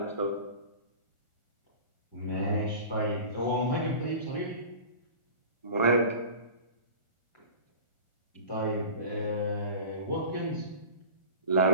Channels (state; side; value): late; right; 1.4 ms